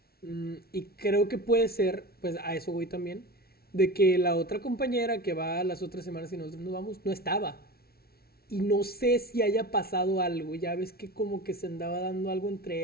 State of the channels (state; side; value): late; right; 0.44 ms